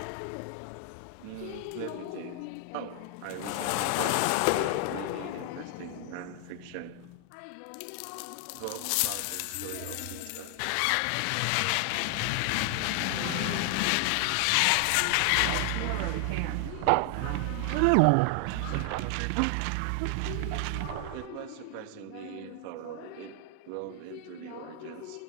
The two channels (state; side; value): different; both; correlation 0.00